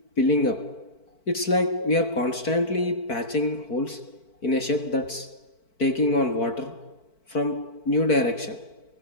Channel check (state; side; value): late; right; 4.5 ms